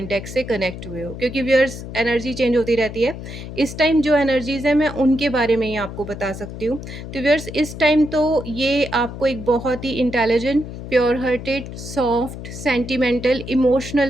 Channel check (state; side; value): noise; left; hum, 10 dB below the sound